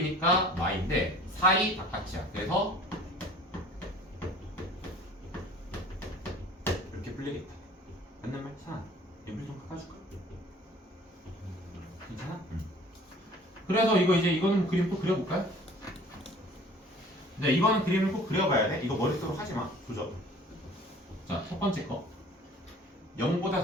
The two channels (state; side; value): normal; both; correlation 0.49